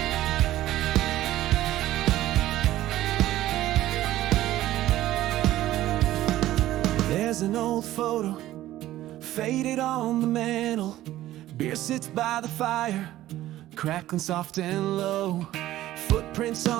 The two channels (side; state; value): left; quieter; 14.6 dB